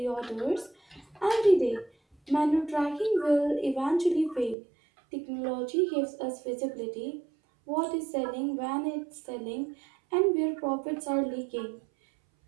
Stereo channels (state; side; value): drops out; left; at 4.5 s